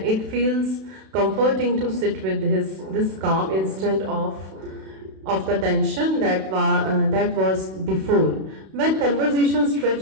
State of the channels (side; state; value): left; late; 32 ms